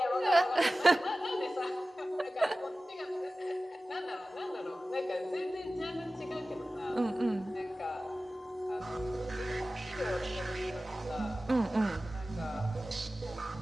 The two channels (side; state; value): both; normal; correlation 0.96